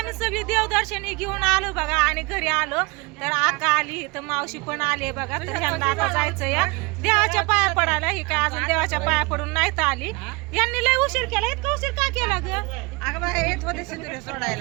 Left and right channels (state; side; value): quieter; left; 27.0 dB